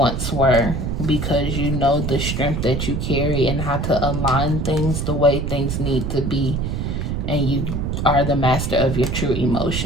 were, because you know the strength that you carry and how to align things the way things need to be, and you are the master of your true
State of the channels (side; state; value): right; noise; rumble, 2 dB below the sound